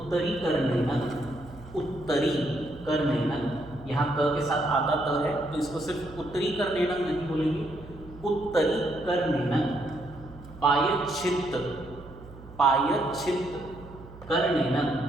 करनेन, उत्तरी करनेन, यहाँ क के साथ आधा त है तो इसको सिर्फ उत्तरी करनेन नहीं बोलेंगे, उत्तरी करनेन। पायच्छित्त, पायच्छित्त करनेन,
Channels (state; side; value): noise; right; hum, 18 dB below the sound